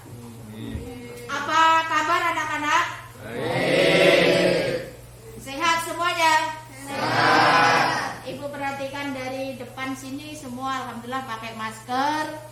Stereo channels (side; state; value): both; identical; correlation 1.00